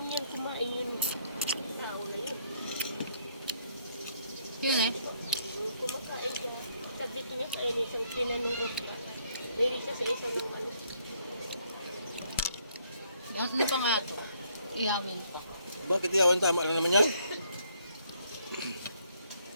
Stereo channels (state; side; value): inverted; both; correlation -0.69